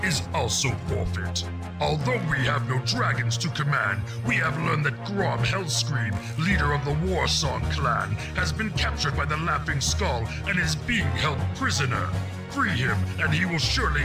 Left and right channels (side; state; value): both; identical; correlation 1.00